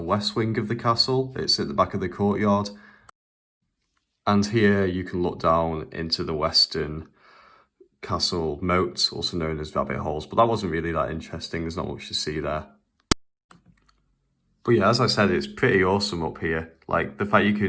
wing of the castle. It's at the back of the courtyard. And here you can look down into the western castle moat, also known as rabbit holes. But that wasn't really that interesting. There's not much to see there. But yeah, as I said, it's pretty awesome up here. Like, the fact you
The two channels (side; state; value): both; identical; correlation 1.00